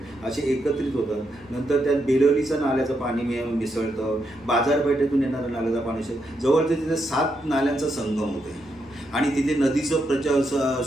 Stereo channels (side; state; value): both; normal; correlation 0.81